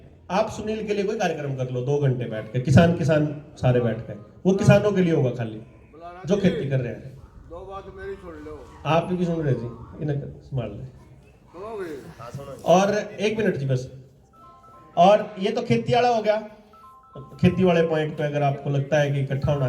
आप सुनील के लिए कोई कार्यक्रम कर लो 2 घंटे बैठ के, किसान सारे बैठ के, वो किसानों के लिए होगा खाली, जो खेती कर रहे हैं। दो बात मेरी सुन लो, आप भी सुन रहे जी, इन्हें संभाल ले। तो और एक मिनट जी बस। और ये तो खेती वाला हो गया, खेती वाले पॉइंट पे अगर आपको लगता है कि इकट्ठा होना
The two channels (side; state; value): both; identical; correlation 1.00